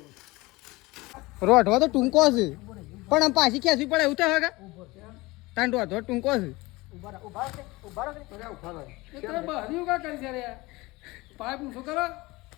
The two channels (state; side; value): quieter; right; 21.8 dB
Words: રોઢવા તો ટૂંકો છે પણ આમ પાછી ખેંચવી પડે એવું તો હવે તાન રોઢવા ટૂંકો છે.